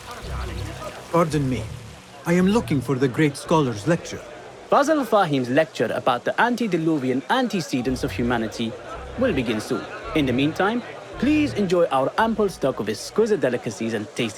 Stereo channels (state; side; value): identical; both; correlation 1.00